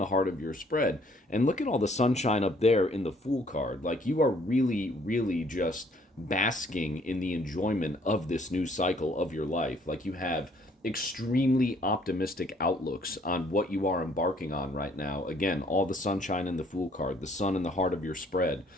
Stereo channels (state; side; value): normal; both; correlation 0.62